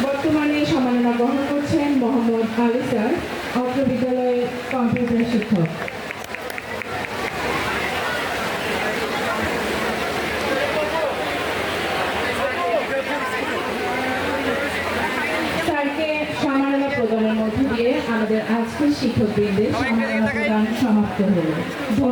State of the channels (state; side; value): identical; both; correlation 1.00